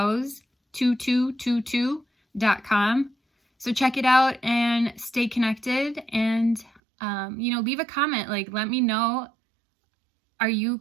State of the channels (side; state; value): left; drops out; at 6.8 s